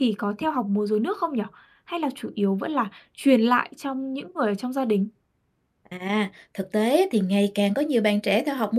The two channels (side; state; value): both; identical; correlation 1.00